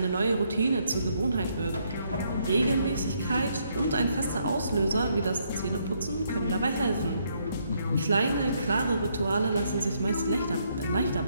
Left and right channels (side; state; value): both; inverted; correlation -0.73